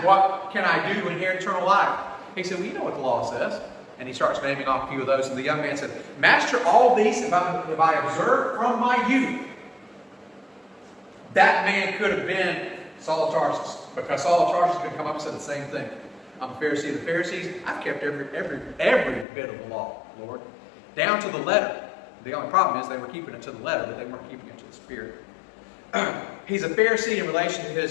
what can I do to inherit eternal life? He said, well, you know what the law says. And he starts naming off a few of those. And the young man said, Master, all these have I observed from my youth. That man could have been Saul of Tarsus, because Saul of Tarsus could come up and say the same thing. I'm a Pharisee of the Pharisees. I've kept every bit of the law, Lord, down to the letter. The only problem is they were keeping it to the letter, but they weren't keeping it to the spirit. He's a Pharisee in relation to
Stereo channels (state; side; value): drops out; right; at 19.2 s